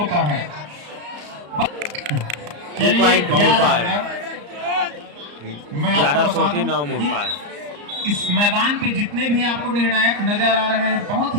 है। 2 पॉइंट मुड़पार। मैं आपको बता दूं 11-9 मुड़पार। इस मैदान पे जितने भी आपको निर्णायक नजर आ रहे हैं बहुत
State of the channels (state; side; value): late; left; 34 ms